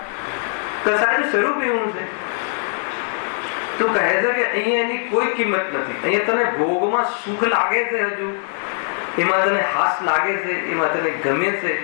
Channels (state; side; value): silent; right; 59 dB below the other